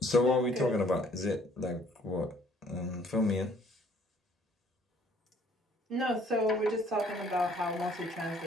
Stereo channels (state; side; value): normal; both; correlation 0.60